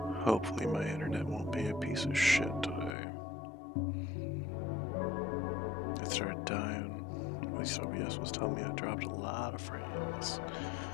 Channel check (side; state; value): right; drops out; at 3.0 s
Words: Hopefully my internet won't be a piece of shit today. It started dying. At least OBS was telling me I dropped a lot of frames.